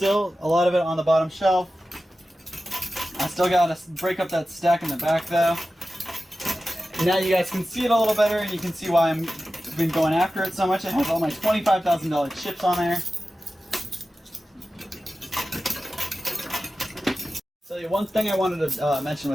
A lot of it on the bottom shelf. I still got to break up that stack in the back though. Now you guys can see it a little better, and you can see why I've been going after it so much. It has all my $25,000 chips on there. So the one thing I wanted to mention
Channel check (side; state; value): both; normal; correlation 0.94